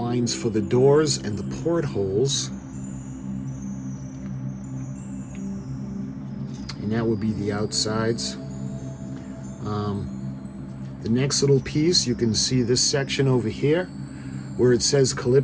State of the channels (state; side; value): identical; both; correlation 1.00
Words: for the doors and the portholes. And that would be the outsides. The next little piece, you can see this section over here where it says